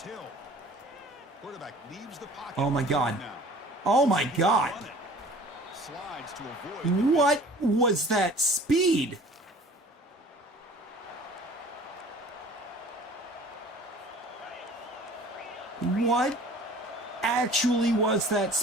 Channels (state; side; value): normal; both; correlation 0.47